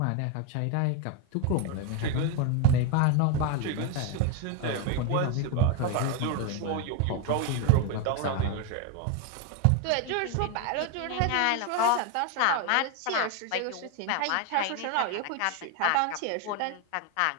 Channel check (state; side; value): different; both; correlation 0.02